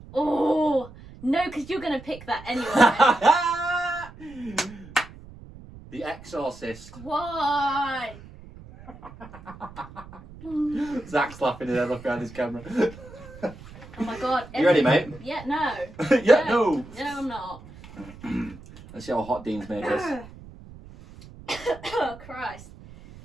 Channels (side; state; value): right; noise; rumble, 18 dB below the sound